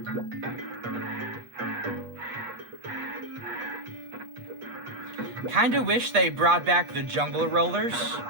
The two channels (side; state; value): left; late; 8.3 ms